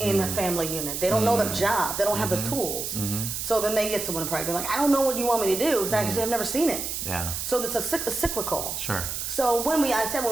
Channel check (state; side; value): noise; right; hiss, 4 dB below the sound